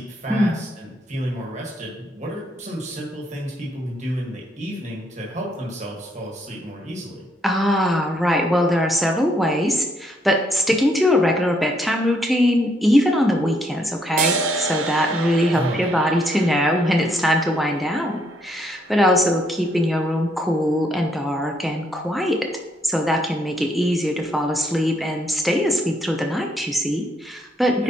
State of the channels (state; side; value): normal; both; correlation 0.72